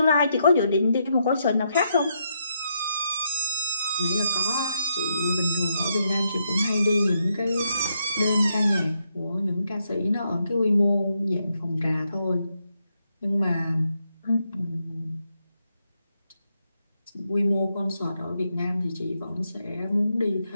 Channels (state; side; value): inverted; both; correlation -0.80